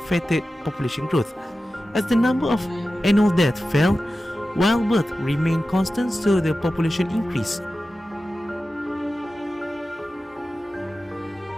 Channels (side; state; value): both; normal; correlation 0.94